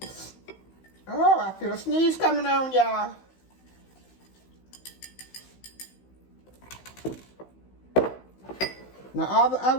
Oh, I feel a sneeze coming on, y'all. Now, all the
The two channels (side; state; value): right; late; 16 ms